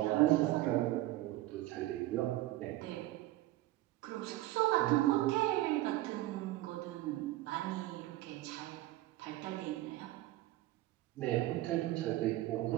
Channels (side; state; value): left; quieter; 16.6 dB